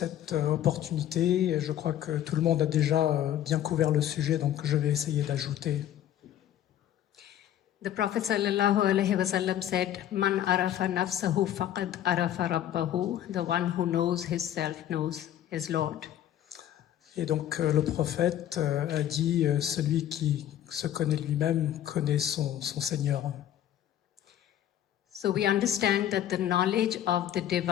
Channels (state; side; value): quieter; right; 11.4 dB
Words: opportunité. Je crois que tout le monde a déjà bien couvert le sujet, donc je vais essayer d'ajouter. The Prophet sallallahu alaihi wasallam said, "Man arafa nafsahu faqad arafa rabbahu." The one who knows himself knows his Lord. Et donc le prophète a dit, celui qui se connaît lui-même connaît son Seigneur. So we understand that the knowledge of the